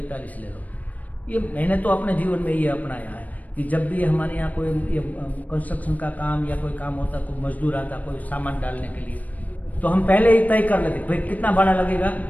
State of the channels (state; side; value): late; right; 0.074 ms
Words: ले लो। ये मैंने तो अपने जीवन में ये अपनाया है कि जब भी हमारे यहाँ कोई कंस्ट्रक्शन का काम या कोई काम होता, कोई मजदूर आता कोई सामान डालने के लिए, तो हम पहले ही तय कर लेते भाई कितना भाड़ा लगेगा,